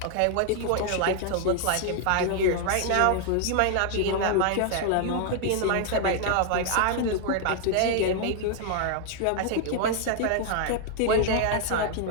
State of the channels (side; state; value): both; different; correlation 0.00